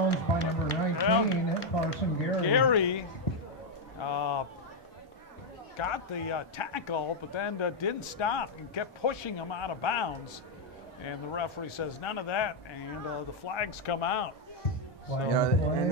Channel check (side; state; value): both; normal; correlation 0.01